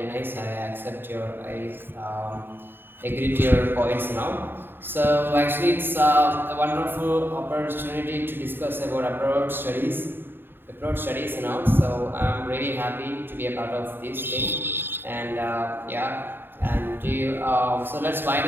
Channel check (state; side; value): late; left; 0.099 ms